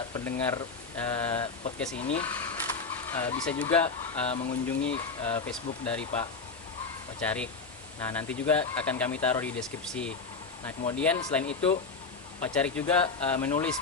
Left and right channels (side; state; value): right; quieter; 4.5 dB